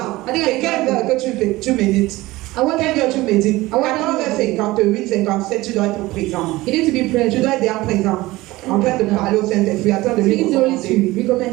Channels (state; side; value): quieter; left; 19.2 dB